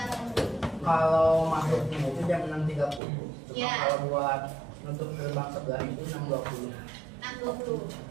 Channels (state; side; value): drops out; left; at 3.0 s